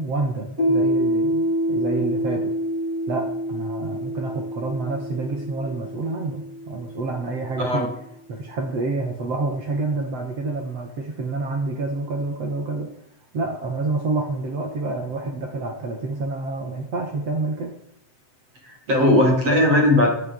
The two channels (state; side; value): late; left; 7.8 ms